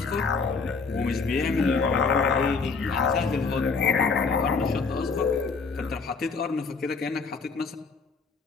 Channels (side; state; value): right; quieter; 4.7 dB